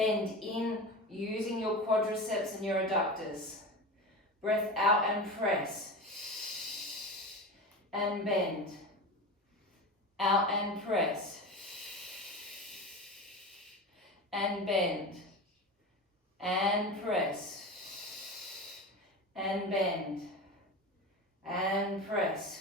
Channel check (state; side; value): normal; both; correlation 0.27